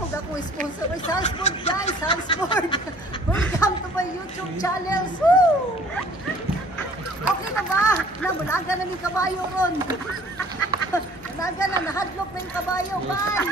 ako sponsor. Ay, Salzburg guys, Salzburg. Welcome to my YouTube channel. Woo! Okay na ba? Namulaga na yung kabayo ron. Nanaga na, nahadlok na yung kabayo.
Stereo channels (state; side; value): normal; both; correlation 0.53